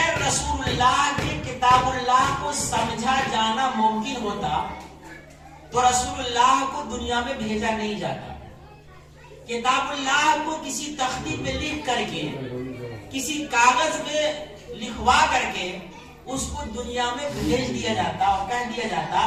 رسول اللہ کے کتاب اللہ کو سمجھا جانا ممکن ہوتا تو رسول اللہ کو دنیا میں بھیجا نہیں جاتا۔ کتاب اللہ کو کسی تختی پہ لکھ کر کے، کسی کاغذ پہ لکھوا کر کے اس کو دنیا میں بھیج دیا جاتا اور کہہ دیا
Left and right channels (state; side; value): identical; both; correlation 1.00